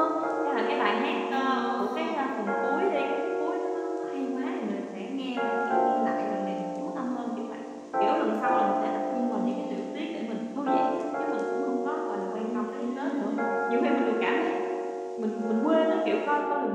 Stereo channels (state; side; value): identical; both; correlation 1.00